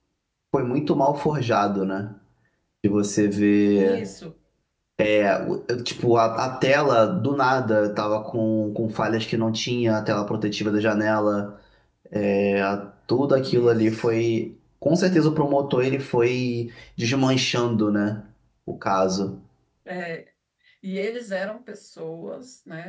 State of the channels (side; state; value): both; identical; correlation 1.00